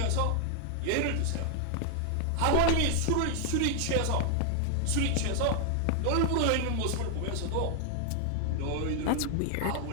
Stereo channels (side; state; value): both; different; correlation 0.00